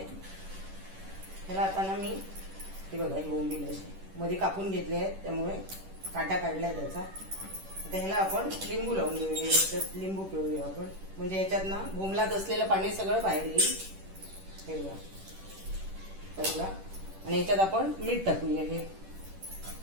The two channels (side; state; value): left; late; 10 ms